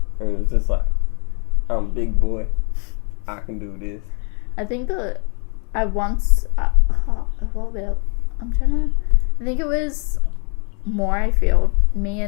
And it was just like, I'm a big boy. I can do this. I think I once, I think it was Morayfield. Me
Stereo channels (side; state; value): right; quieter; 37.4 dB